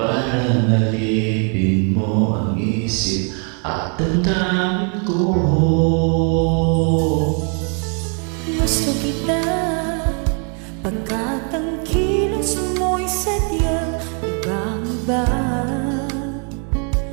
nalipin mo ang isip at damdamin ko. gusto kita, pagkat ang kilos mo'y sadyang ibang-iba.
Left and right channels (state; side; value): quieter; left; 39.8 dB